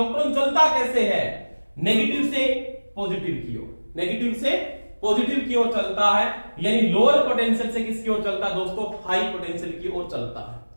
चलता कैसे है, नेगेटिव से पॉजिटिव की ओर, नेगेटिव से पॉजिटिव की ओर चलता है। यानी लोअर पोटेंशियल से किसकी ओर चलता है दोस्तों, हाई पोटेंशियल की ओर चलता है।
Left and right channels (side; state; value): both; inverted; correlation -1.00